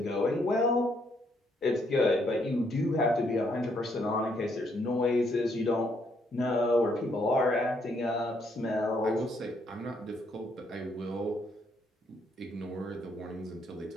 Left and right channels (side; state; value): both; normal; correlation 0.72